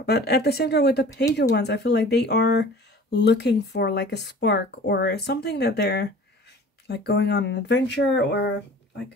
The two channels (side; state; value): both; normal; correlation 0.44